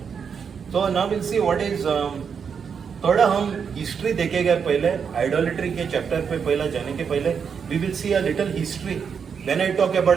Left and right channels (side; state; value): left; quieter; 6.6 dB